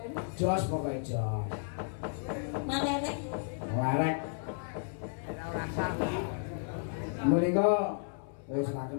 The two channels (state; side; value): silent; right; 56 dB below the other